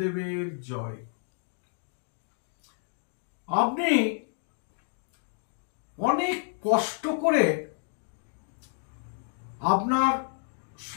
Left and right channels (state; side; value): silent; right; 58 dB below the other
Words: জয়। আপনি অনেক কষ্ট করে আপনার